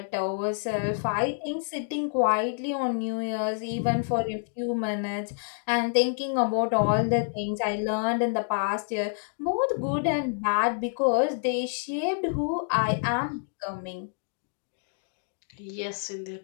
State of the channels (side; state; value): right; silent; digital silence